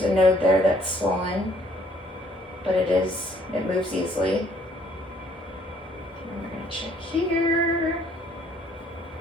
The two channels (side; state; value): both; normal; correlation 0.63